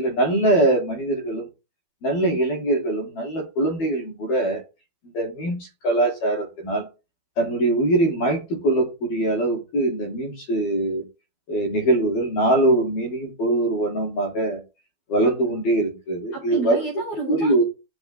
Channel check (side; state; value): right; late; 12 ms